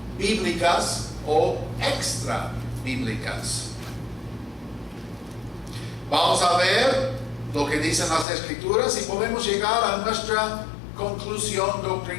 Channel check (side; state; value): right; drops out; at 8.2 s